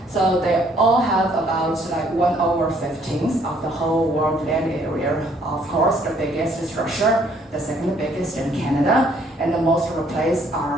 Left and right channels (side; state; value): both; normal; correlation 0.64